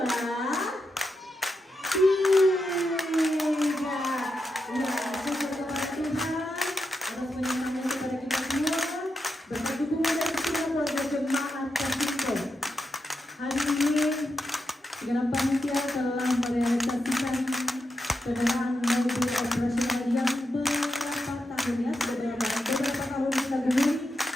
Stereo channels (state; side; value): normal; both; correlation 0.86